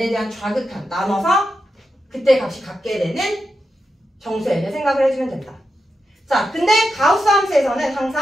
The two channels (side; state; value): both; normal; correlation 0.88